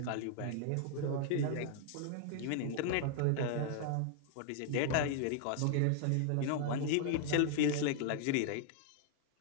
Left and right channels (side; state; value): both; different; correlation 0.00